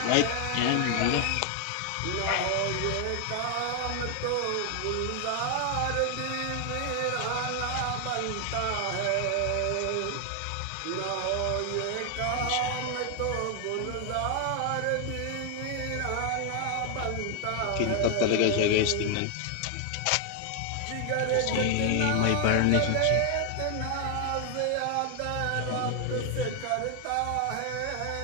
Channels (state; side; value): different; both; correlation 0.00